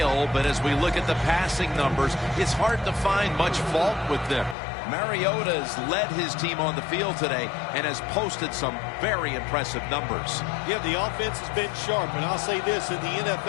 but as we look at the passing numbers, it's hard to find much fault with them. Mariota's led his team on the field today and has posted some very impressive numbers. Yeah, the offense has been sharp, and I'll say this, in the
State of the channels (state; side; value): drops out; right; at 4.5 s